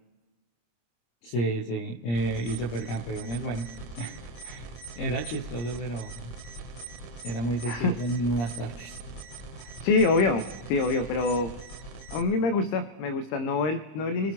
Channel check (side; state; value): right; late; 26 ms